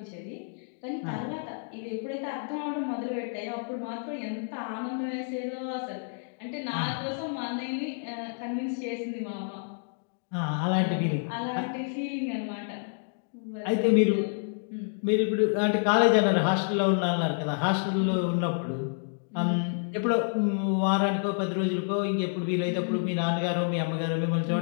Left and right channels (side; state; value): right; silent; digital silence